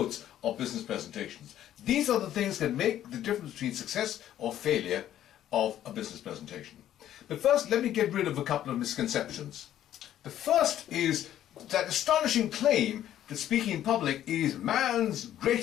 of business presentations. These are the things that make the difference between success or failure of a business presentation. But first, let me get rid of a couple of misconceptions. The first is that astonishing claim that speaking in public is man's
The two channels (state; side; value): quieter; right; 11.8 dB